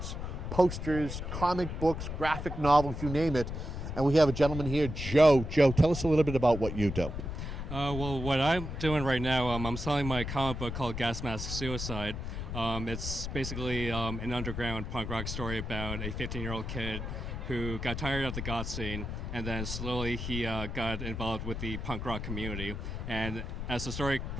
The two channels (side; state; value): left; noise; rumble, 5 dB below the sound